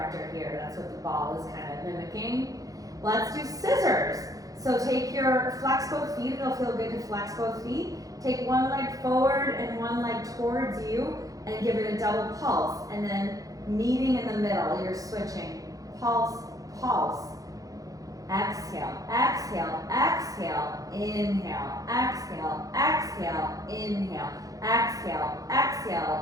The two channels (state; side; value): late; left; 0.17 ms